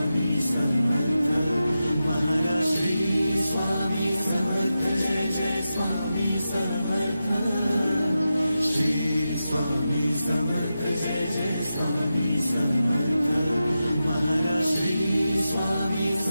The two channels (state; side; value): inverted; both; correlation -0.91